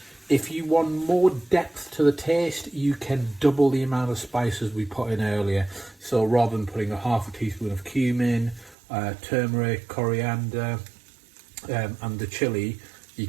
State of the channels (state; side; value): drops out; left; at 8.8 s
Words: If you want more depth to the taste, you can double the amount of spices we put in earlier. So rather than putting a half a teaspoon of cumin, turmeric, coriander, and the chilli, you